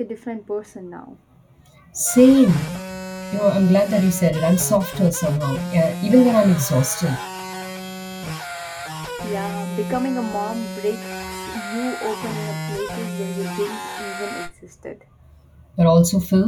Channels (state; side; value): identical; both; correlation 1.00